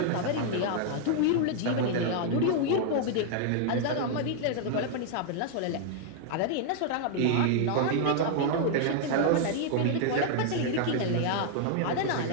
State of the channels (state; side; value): different; both; correlation -0.01